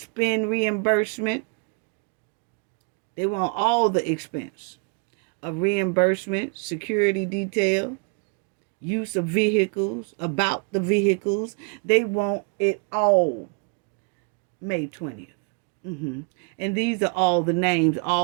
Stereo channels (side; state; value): left; quieter; 37.0 dB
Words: reimbursement. They want all the expense of reimbursement, security detail, use of vehicles, about the vehicles. They want it all May 20th. And these are all the names,